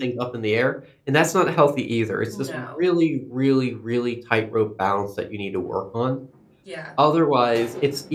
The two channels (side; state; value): both; identical; correlation 1.00